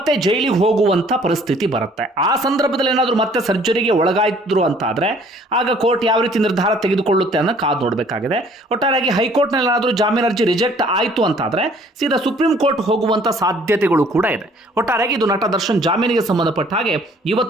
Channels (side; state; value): both; normal; correlation 0.57